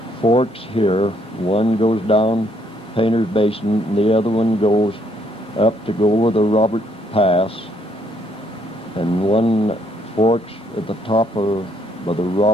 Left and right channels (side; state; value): both; normal; correlation 0.69